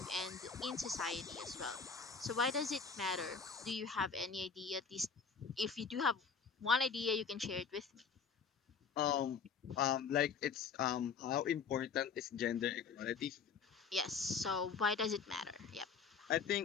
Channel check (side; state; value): right; quieter; 5.8 dB